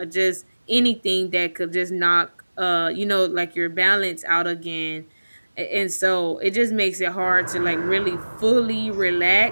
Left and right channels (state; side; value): inverted; both; correlation -1.00